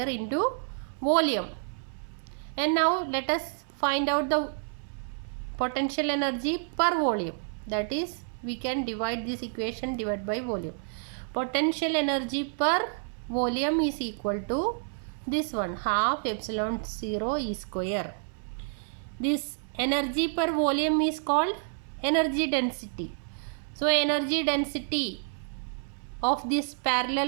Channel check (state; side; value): silent; left; 58 dB below the other